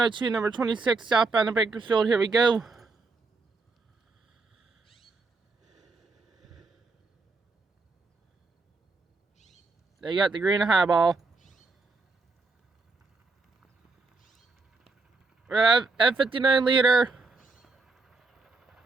number 26, southbound to Bakersfield. Here we go. They got the green highball. We have F59 leader.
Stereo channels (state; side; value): quieter; left; 3.8 dB